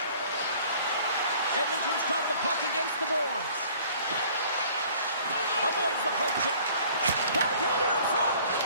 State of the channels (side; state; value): both; inverted; correlation -0.53